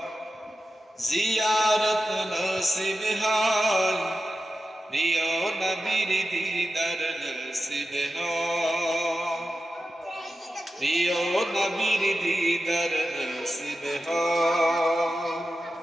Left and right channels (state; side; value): normal; both; correlation 0.92